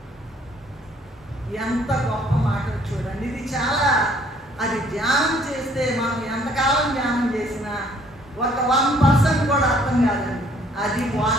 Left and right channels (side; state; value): both; normal; correlation 0.61